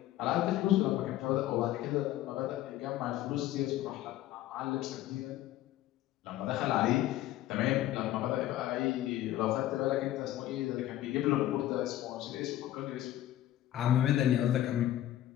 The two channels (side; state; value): right; quieter; 13.7 dB